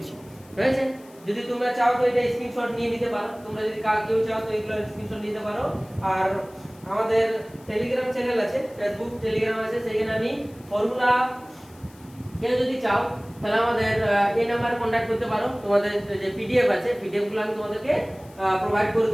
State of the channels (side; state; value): left; noise; hiss, 26 dB below the sound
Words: হয়েছে? যদি তোমরা চাও তো এটা স্ক্রিনশট নিয়ে নিতে পারো, তোমরা যদি কেউ চাও তো এগুলো স্ক্রিনশট নিতে পারো। আর আমাদের টেলিগ্রাম চ্যানেল আছে, ফেসবুক টেলিগ্রাম আছে, সেখানে আমি ফর্মুলা কেউ যদি চাও তাহলে আমাদের এই নাম্বারে কন্টাক্ট করতে পারো। তোমাদের যে পিডিএফ আছে, পিডিএফগুলো আমি তোমাদেরকে প্রোভাইড করে